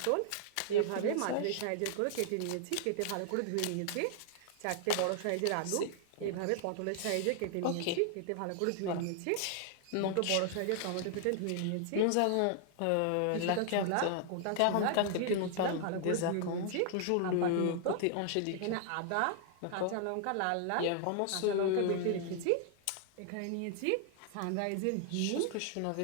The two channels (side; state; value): both; different; correlation 0.00